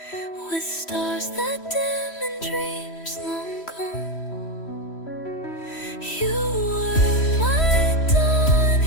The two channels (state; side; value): late; right; 3.1 ms